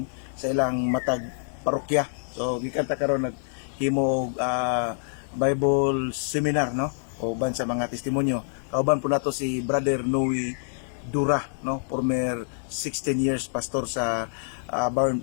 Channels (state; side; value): silent; right; digital silence